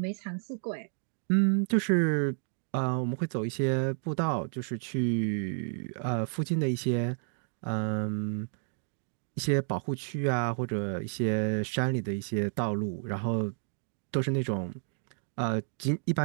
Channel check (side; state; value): left; silent; 57 dB below the other